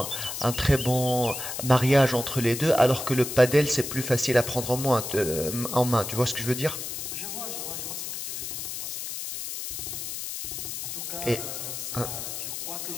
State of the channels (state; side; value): noise; left; hiss, 6 dB below the sound